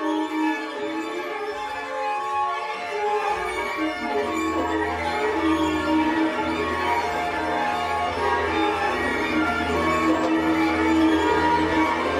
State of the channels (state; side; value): identical; both; correlation 1.00